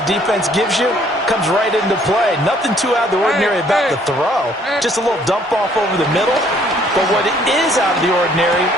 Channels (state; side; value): normal; both; correlation 0.62